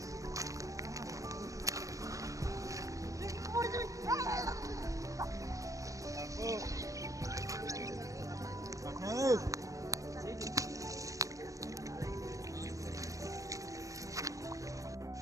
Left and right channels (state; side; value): late; left; 0.16 ms